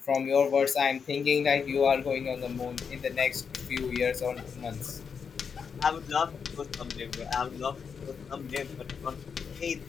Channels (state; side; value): quieter; right; 6.3 dB